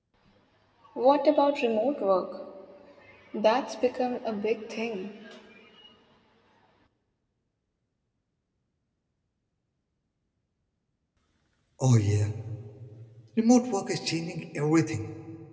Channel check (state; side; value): identical; both; correlation 1.00